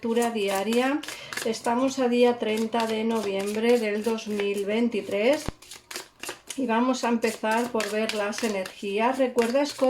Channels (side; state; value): both; identical; correlation 1.00